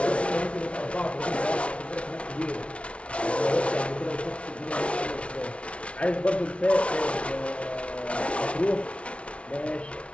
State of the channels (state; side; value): late; right; 0.061 ms